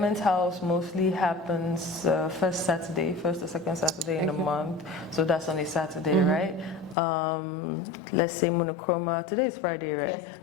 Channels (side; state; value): right; drops out; at 7.0 s